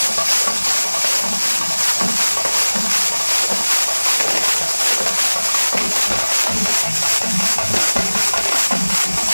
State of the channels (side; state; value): both; inverted; correlation -1.00